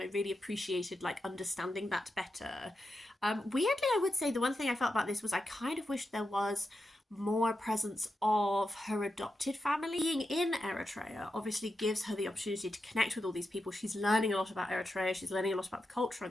I really appreciated like understanding that better. Weirdly, I would say the one thing I felt about this was I kind of wished there was more presence of her adopted family. Being in Eritrea obviously gives her the opportunity to connect with all these people. She's learning a lot about Eritrea, she's learning a lot about the culture of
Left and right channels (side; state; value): both; normal; correlation 0.88